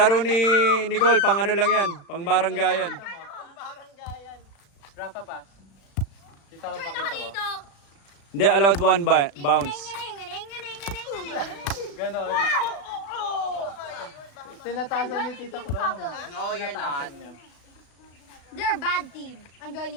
ni Nicole, pang ano lang yan, pang baranggayan. Rafa pass. Dito ako Turn ako dito. Hindi, allowed one bounce. Gano'n. Tinatasan ni Tita Clon. No, you're not. They're a bad team. I'm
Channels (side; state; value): right; late; 36 ms